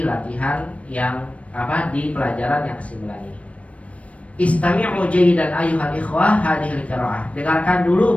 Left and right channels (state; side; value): late; right; 0.064 ms